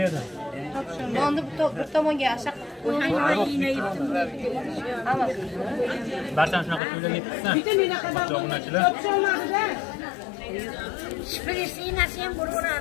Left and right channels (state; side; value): drops out; right; at 6.8 s